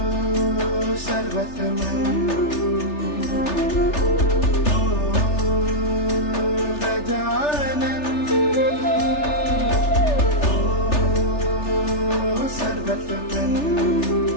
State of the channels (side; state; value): right; late; 3.4 ms